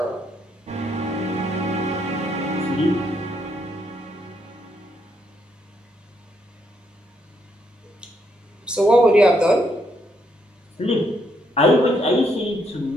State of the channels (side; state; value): both; normal; correlation 0.75